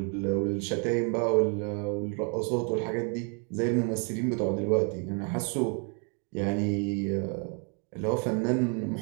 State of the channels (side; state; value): left; quieter; 38.5 dB